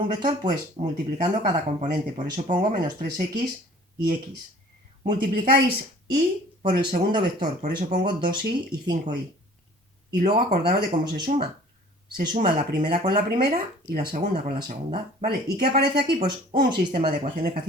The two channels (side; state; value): both; normal; correlation 0.49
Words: vector? Pues multiplicando cada componente. Por eso pongo menos 3x y x. Multiplicáis y por el segundo vector. Por eso pongo 2y y 5y. Y luego acordaros de cómo se suma. Se suma la primera con la primera y la segunda con la segunda. ¿Vale? ¿Y qué aparece aquí? Pues un sistema de ecuaciones que